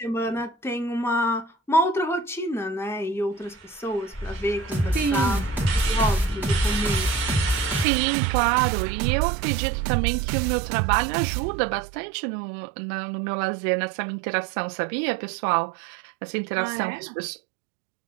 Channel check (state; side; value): drops out; left; at 7.9 s